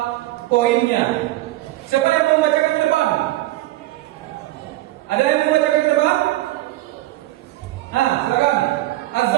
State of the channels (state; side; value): quieter; left; 17.1 dB